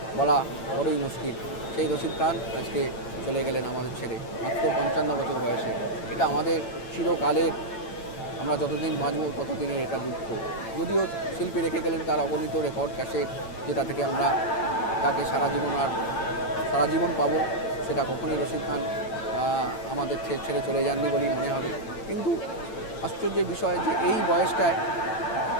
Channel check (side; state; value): right; late; 8.9 ms